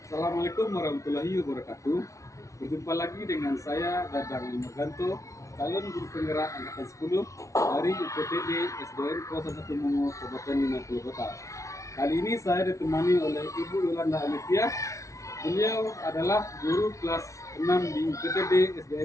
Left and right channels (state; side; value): late; right; 0.15 ms